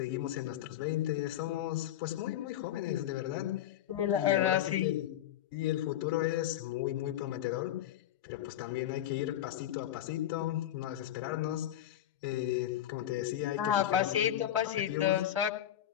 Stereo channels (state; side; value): quieter; right; 11.8 dB